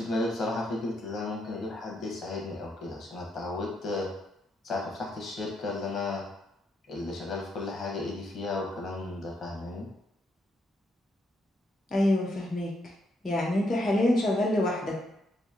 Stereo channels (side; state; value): both; normal; correlation 0.77